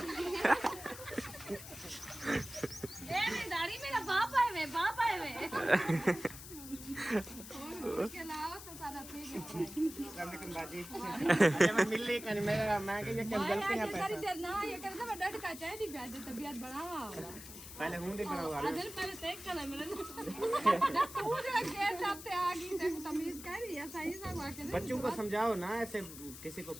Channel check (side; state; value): left; noise; hiss, 13 dB below the sound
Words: ए मेरी दाढ़ी मेरा बाप आए वे के लाओ तो सारा ठीक है मैं मिल ली कहीं मैं कि ये क्या गलती है पैसा देर ना ये कर दे डट का चाहे दी ब्याज तबीयत बढ़ावा पहले हूं दे करा आदर पहले चेक कर मेरे तू जरा गेट साथ आ गई देखो तमीज कर रही है सही से हुआ के बच्चों को समझाओ ना ऐसे किसी को